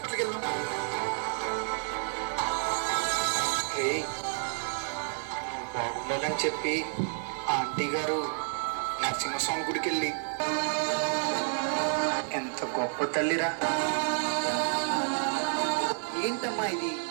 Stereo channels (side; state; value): left; silent; 58 dB below the other